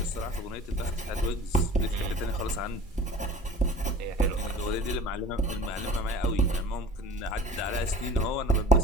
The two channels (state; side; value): normal; both; correlation 0.43